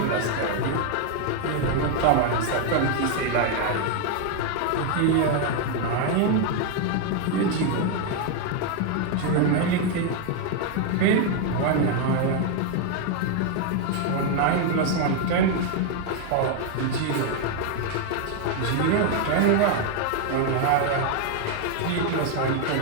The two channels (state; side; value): different; both; correlation 0.00